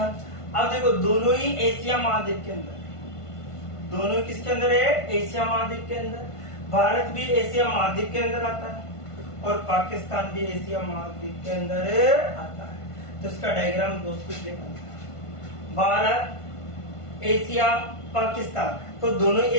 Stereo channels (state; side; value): late; right; 1.5 ms